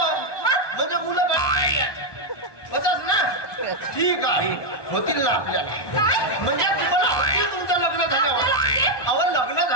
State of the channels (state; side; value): late; right; 1.2 ms